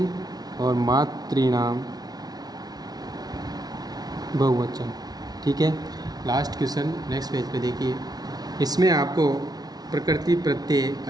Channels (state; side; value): late; left; 0.19 ms